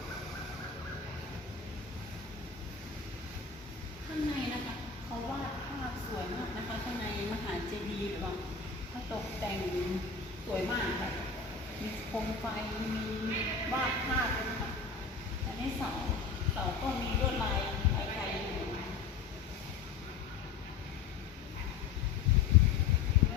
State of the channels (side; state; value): right; quieter; 5.4 dB